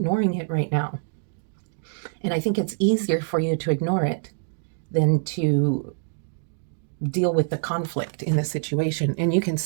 it right now. And I think it's easier for you to ignore it than to deal with the conflict in the situation. And you can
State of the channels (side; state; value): left; silent; digital silence